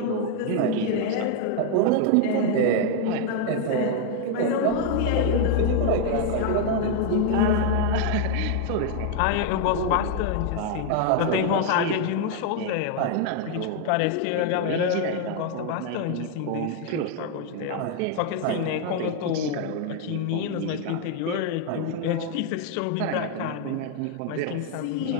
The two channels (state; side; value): different; both; correlation 0.00